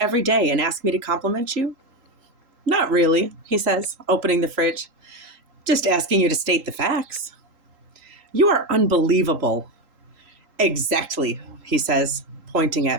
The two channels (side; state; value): left; late; 3.8 ms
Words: day and ask me to compliment you? Not really, he says, opening the fridge. Just asking you to state the facts. You are unbelievable. Exactly, he says, pointing